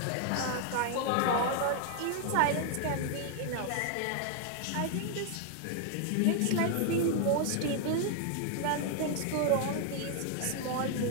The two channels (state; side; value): different; both; correlation 0.00